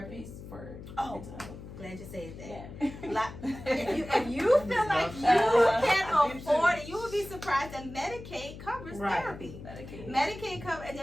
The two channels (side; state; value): left; noise; hum, 13 dB below the sound